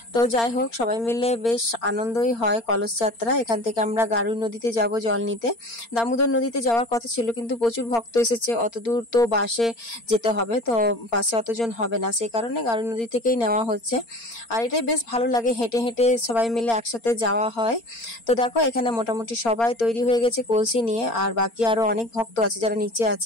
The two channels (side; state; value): right; late; 4.3 ms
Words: তো যাই হোক, সবাই মিলে বেশ আনন্দই হয় কলস যাত্রা। এখান থেকে আমরা গারুই নদীতে যাব জল নিতে। দামোদর নদীতে যাওয়ার কথা ছিল, কিন্তু প্রচুর ভক্ত এসেছে, অত দূর তো বাসে যেতে হবে, তো বাসে অতজন হবে না, সেই কারণে গারুই নদী থেকেই নেওয়া হচ্ছে। আর এটাই বেশ ভালো লাগে, হেঁটে হেঁটে সবাই মিলে একসাথে যাওয়া হয়। তো দেখো এখানে মোটামুটি সবাই তৈরি হয়ে গেছে কলসি নিয়ে, আর বাকি আরো অনেক ভক্ত আছে যারা নিচে